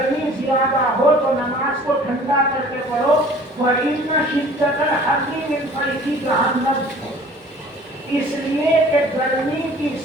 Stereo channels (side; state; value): both; normal; correlation 0.49